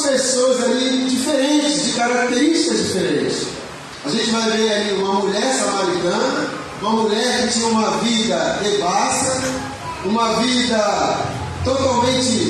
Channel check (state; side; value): identical; both; correlation 1.00